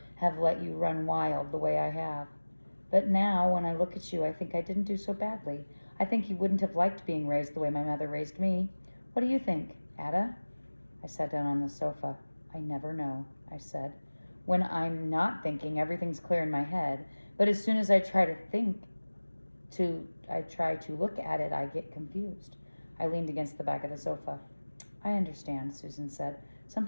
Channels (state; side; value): inverted; both; correlation -1.00